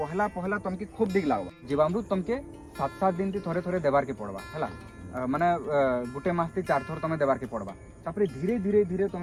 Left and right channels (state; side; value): identical; both; correlation 1.00